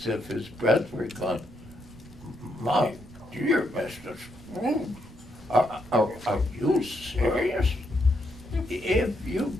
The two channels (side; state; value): right; noise; rumble, 20 dB below the sound